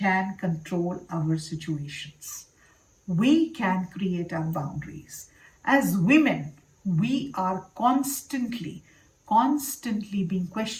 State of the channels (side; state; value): both; identical; correlation 1.00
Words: can control our situations. We can create our boundaries. As women, we are constantly being